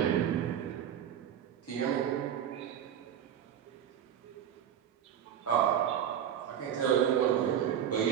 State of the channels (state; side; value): quieter; left; 9.5 dB